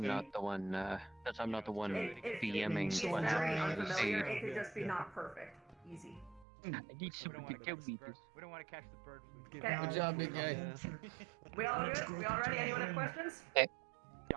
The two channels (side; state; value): left; drops out; at 6.5 s